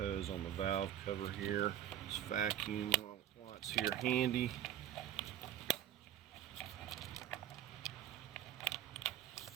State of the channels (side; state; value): left; quieter; 11.3 dB